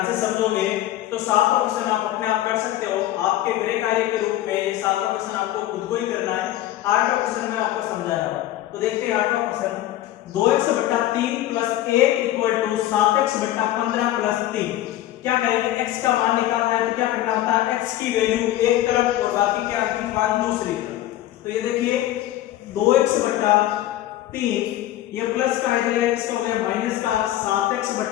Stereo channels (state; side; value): quieter; right; 14.0 dB